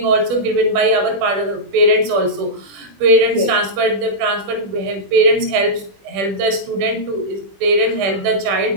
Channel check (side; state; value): left; late; 20 ms